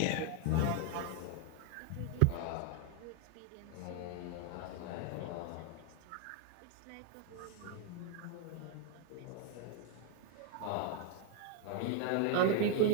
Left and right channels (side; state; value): both; different; correlation 0.01